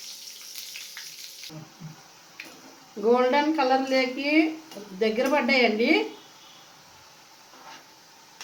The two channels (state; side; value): identical; both; correlation 1.00